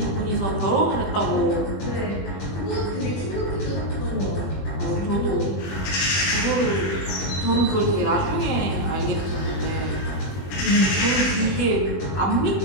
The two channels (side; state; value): right; late; 21 ms